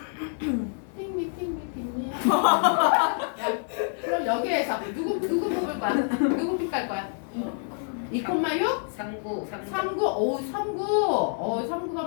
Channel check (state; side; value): silent; right; 60 dB below the other